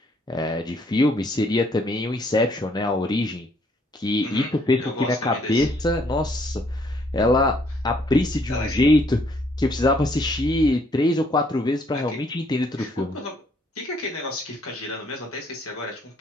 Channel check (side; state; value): both; normal; correlation 0.66